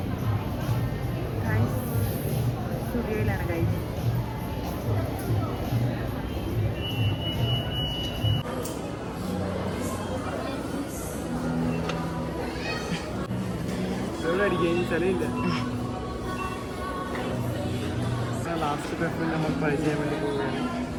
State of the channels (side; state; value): both; identical; correlation 1.00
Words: Guys, സ്റ്റുഡിയോയിലാണ് guys. ലാസ്റ്റ് പേപ്പറിൽ നമ്മൾ ട്രൈ ചെയ്യാൻ വേണ്ടി പോവുകയാണ്.